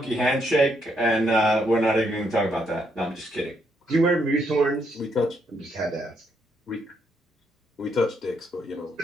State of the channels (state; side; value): normal; both; correlation 0.76